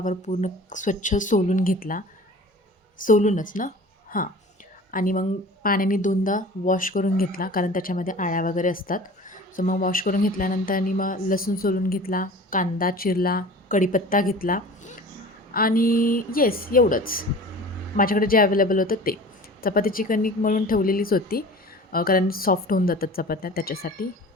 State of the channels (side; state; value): both; normal; correlation 0.41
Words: पूर्ण स्वच्छ सोलून घेतला. सोलूनच ना? हां. आणि मग पाण्याने 2दा वॉश करून घेतला, कारण त्याच्यामध्ये अळ्या वगैरे असतात. सो मग वॉश करून घेतल्यानंतर आणि मग लसूण सोलून घेतला, कांदा चिरला, कढीपत्ता घेतला आणि येस एवढंच. माझ्याकडे जे अवेलेबल होतं ते. चपातीची कणिक मळून ठेवलेलीच होती, कारण सॉफ्ट होऊन जातात चपात्या त्याच्यासाठी.